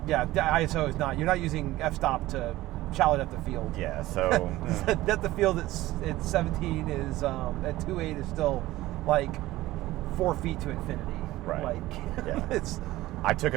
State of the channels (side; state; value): left; quieter; 17.0 dB